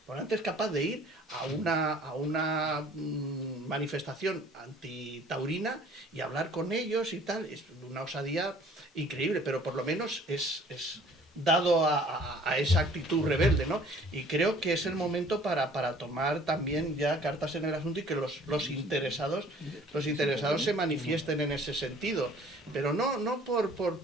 Morante es capaz de ir a una manifestación antitaurina y hablar con ellos y tal. Es una osadía increíble, pero por lo menos es dado a esa actitud rebelde, ¿no? Y creo que es el momento para tomar también ya cartas en el asunto y que los interesados se manifiesten en ese sentido, pero no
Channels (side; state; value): both; normal; correlation 0.53